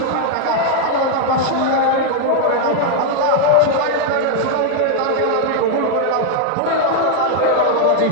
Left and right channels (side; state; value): both; different; correlation 0.00